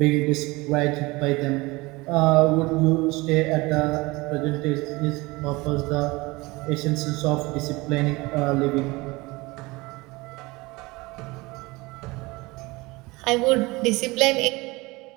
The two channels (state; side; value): quieter; left; 22.8 dB